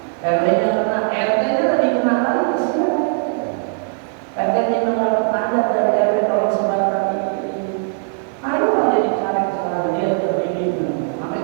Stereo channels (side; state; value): left; silent; 66 dB below the other